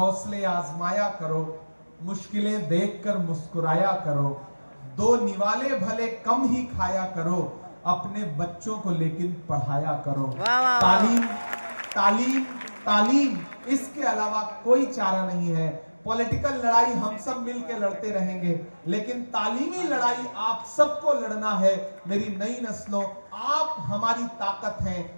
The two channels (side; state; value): both; inverted; correlation -1.00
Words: आजमाया करो, मुश्किलें देखकर मुस्कुराया करो, 2 निवाले भले कम ही खाया करो, अपने बच्चों को लेकिन पढ़ाया करो। तालीम तालीम तालीम, इसके अलावा कोई चारा नहीं है। पॉलिटिकल लड़ाई हम सब मिलके लड़ते रहेंगे, लेकिन तालीमी लड़ाई आप सबको लड़ना है। मेरी नई नस्लों, आप हमारी ताकत हैं।